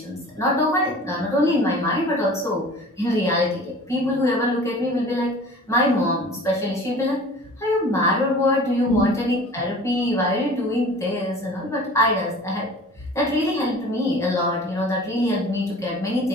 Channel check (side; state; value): both; normal; correlation 0.43